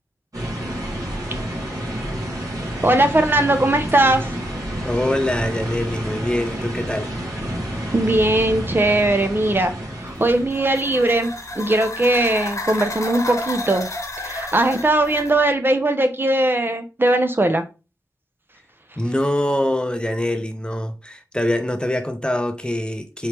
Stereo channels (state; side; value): normal; both; correlation 0.78